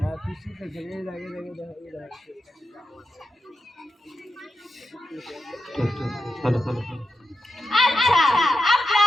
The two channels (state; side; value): normal; both; correlation 0.89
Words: হ্যাঁ পিছু থেকে এই লাগে আচ্ছা,